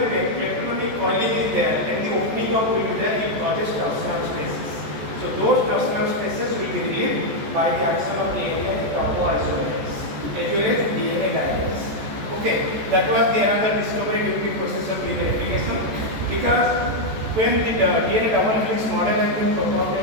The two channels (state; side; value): late; left; 14 ms